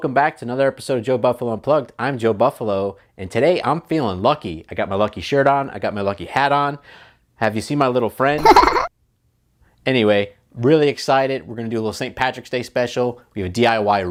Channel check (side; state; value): both; identical; correlation 1.00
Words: back to another episode of Joe Buffalo Unplugged. I'm Joe Buffalo, and today I'm feeling lucky. I got my lucky shirt on, I got my lucky hat on. Have you seen my little friend? Anyway, really excited. We're going to do a little St. Patrick's Day special. We have a